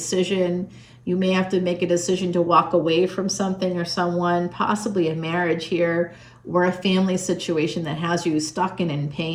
You may have to make a decision to walk away from something or someone, possibly a marriage here, or a family situation that has you stuck and in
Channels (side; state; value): both; identical; correlation 1.00